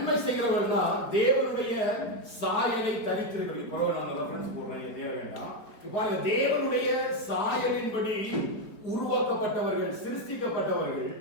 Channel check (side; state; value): right; late; 4.5 ms